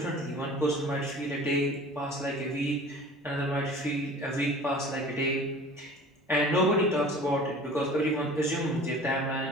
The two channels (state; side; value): normal; both; correlation 0.43